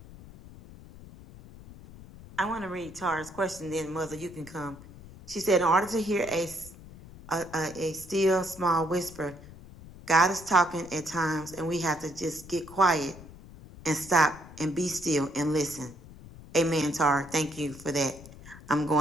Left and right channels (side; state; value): left; noise; rumble, 18 dB below the sound